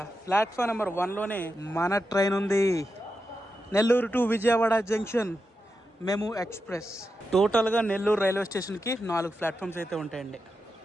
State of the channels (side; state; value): both; normal; correlation 0.88